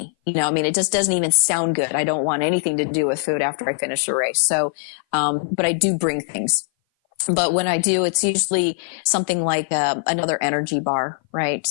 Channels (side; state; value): right; silent; 59 dB below the other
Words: It just doesn't even sound good. I don't want anything to do with food after I finish a race. So, but I do bring things. But when I do, it's usually something like another energy bar, right?